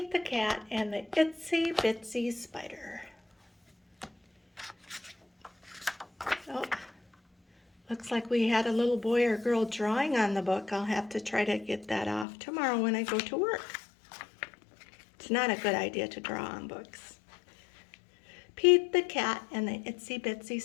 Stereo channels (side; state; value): right; drops out; at 12.2 s